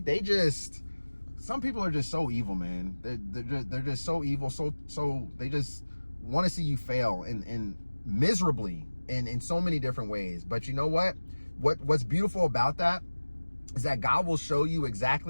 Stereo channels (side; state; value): both; inverted; correlation -1.00